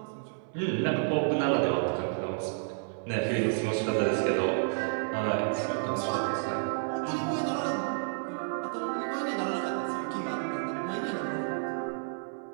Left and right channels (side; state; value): left; silent; 57 dB below the other